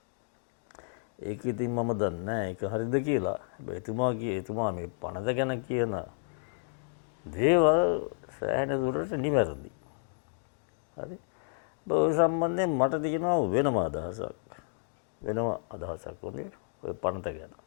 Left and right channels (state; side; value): silent; right; digital silence